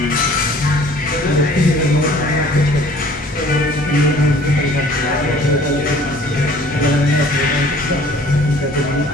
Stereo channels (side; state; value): both; normal; correlation 0.52